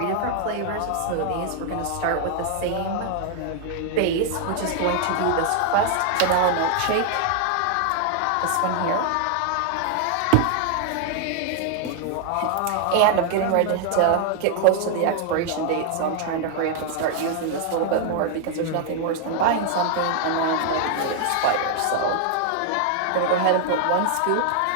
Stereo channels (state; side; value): different; both; correlation 0.00